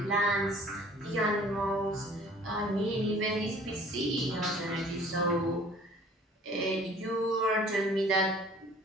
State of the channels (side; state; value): both; normal; correlation 0.51